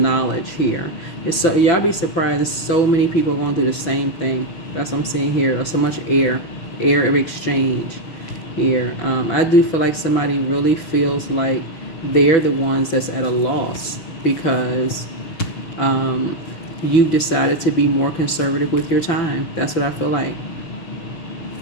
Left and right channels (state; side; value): late; right; 6.0 ms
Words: here. It's so y'all be surprised. There's so many people going through the same thing. That's what I'm seeing here. There's so much air of exchange here. I do feel like somebody really feels like they're the ones that's at a loss because you've decided to be more conservative with your time. That's what I feel like.